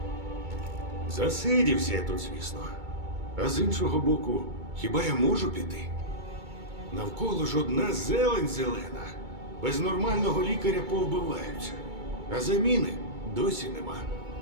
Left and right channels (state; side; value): late; left; 2.2 ms